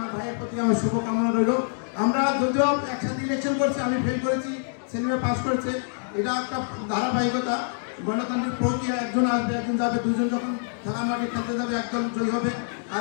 ভাইয়ের প্রতি আমার শুভকামনা রইল। আমরা যদিও একসাথে ইলেকশন করছি, আমি ফেল করেছি, সেলিমে পাস করেছে, এটা একটা ধারাবাহিকতা, গণতান্ত্রিক প্রক্রিয়া। একজন আসবে, একজন যাবে, দুজন যখন খেলা মাঠে খেলতে যাবে একদল জয়ী হবে,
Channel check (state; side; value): silent; right; digital silence